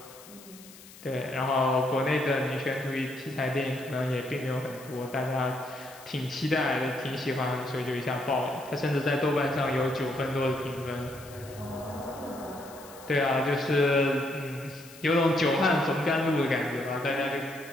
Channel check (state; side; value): noise; left; hiss, 20 dB below the sound